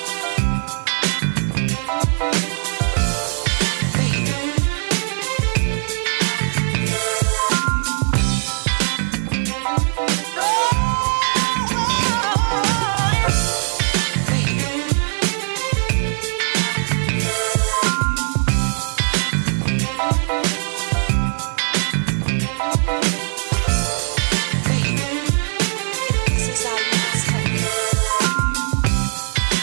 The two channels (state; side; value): silent; left; digital silence